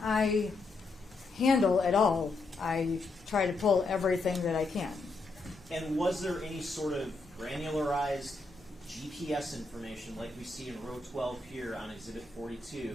I handle at all. I try to pull everything that I can. And was there any sort of granularized GPS information like we see in row 12 here on Exhibit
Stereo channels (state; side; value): quieter; right; 3.5 dB